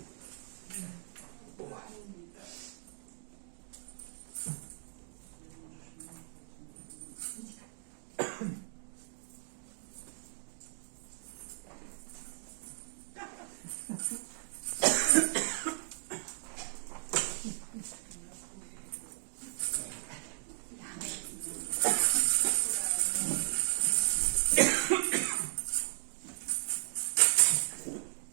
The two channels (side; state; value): left; silent; 54 dB below the other